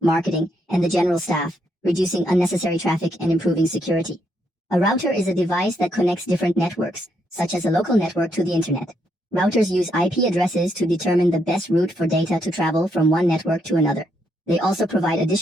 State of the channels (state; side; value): normal; both; correlation 0.76